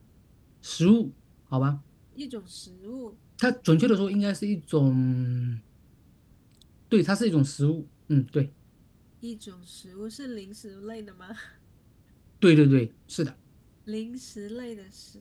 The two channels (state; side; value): identical; both; correlation 1.00